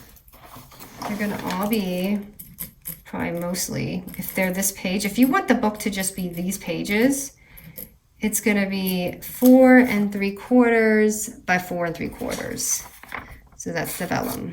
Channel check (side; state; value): both; identical; correlation 1.00